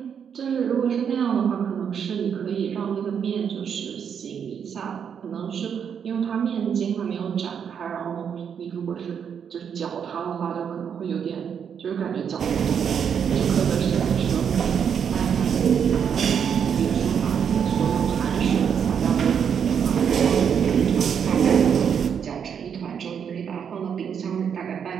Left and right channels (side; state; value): left; quieter; 7.6 dB